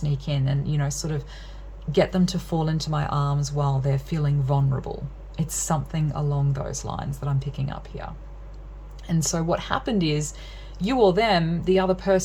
in and, you know, sort of get them to fall into my arms while they're feeling vulnerable. It's something along those lines that I'm picking up here. And so what happened is, you or them, the other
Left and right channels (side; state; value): both; identical; correlation 1.00